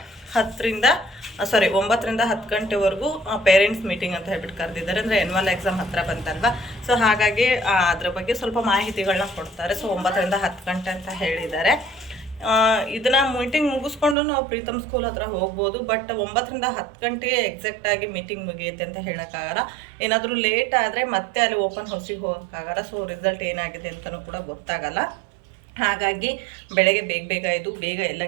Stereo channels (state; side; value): drops out; left; at 14.2 s